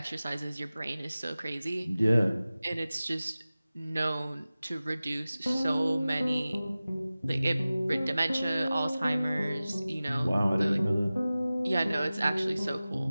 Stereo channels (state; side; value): inverted; both; correlation -0.97